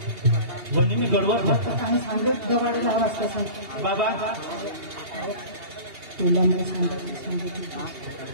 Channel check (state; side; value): late; left; 2.8 ms